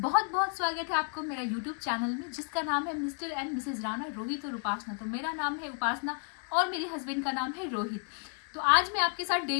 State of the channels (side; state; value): right; quieter; 39.8 dB